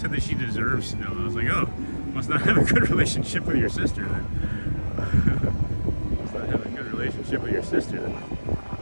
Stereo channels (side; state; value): both; inverted; correlation -1.00